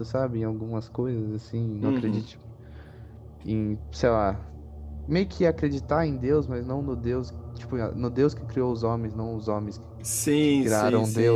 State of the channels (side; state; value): both; identical; correlation 1.00